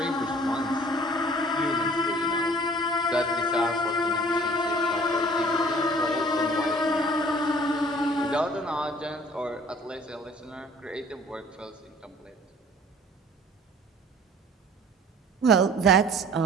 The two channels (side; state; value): both; normal; correlation 0.51